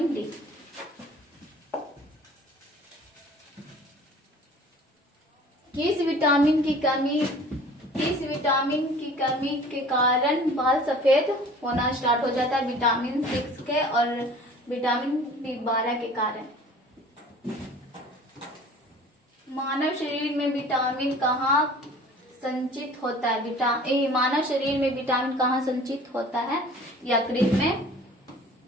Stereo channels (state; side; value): normal; both; correlation 0.46